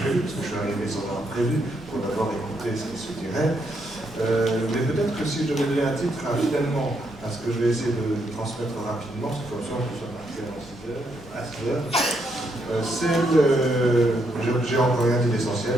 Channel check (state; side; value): normal; both; correlation 0.77